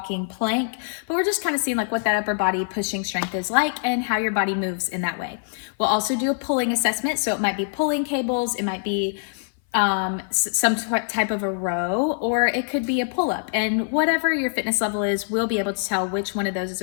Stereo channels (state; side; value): silent; right; 58 dB below the other